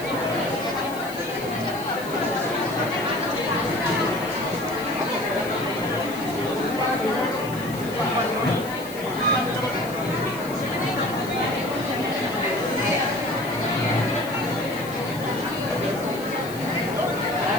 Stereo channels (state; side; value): noise; left; hiss, 16 dB below the sound